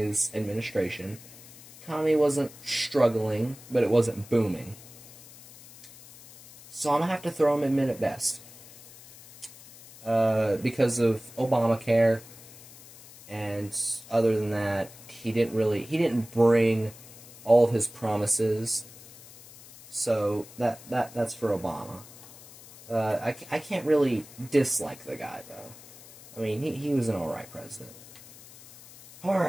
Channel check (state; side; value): noise; left; hiss, 19 dB below the sound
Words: administration. Economy wasn't struggling, but it wasn't booming. So I'm going to have to throw him in mid at best. Because of Obamacare, and other than that, he didn't bring all of his promises. So that's for Obama. I can't really dislike the guy, though. I mean, he was an alright president.